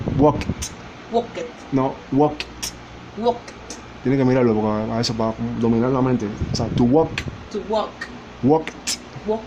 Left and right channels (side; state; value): both; identical; correlation 1.00